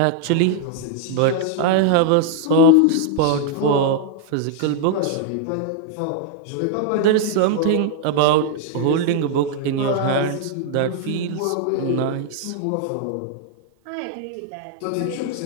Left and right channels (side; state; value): both; different; correlation 0.00